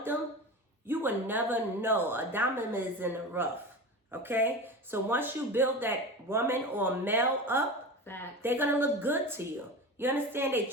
them, you will never know. A diamond is in the rough. Okay? So once you build that woman or male up, Facts. they're going to look good to you. You understand? They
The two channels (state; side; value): normal; both; correlation 0.28